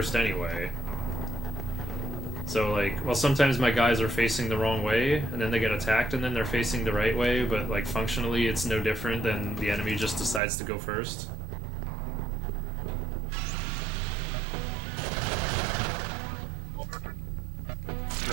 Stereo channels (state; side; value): drops out; left; at 10.4 s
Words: anyway. So like, well, sometimes my guys are facing the wrong way, and then they get attacked, and then they're facing the right way, but like functionally it's no different than the enemy just decides to go first.